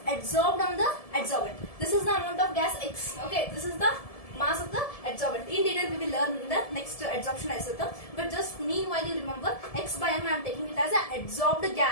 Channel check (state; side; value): late; right; 1.7 ms